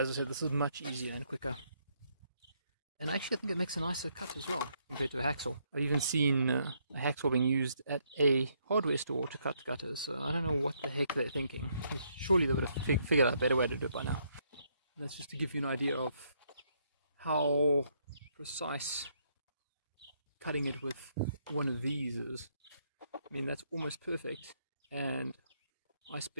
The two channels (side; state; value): both; inverted; correlation -0.73